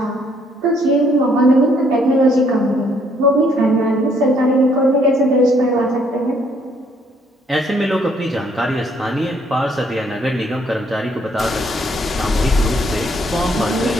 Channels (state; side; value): normal; both; correlation 0.67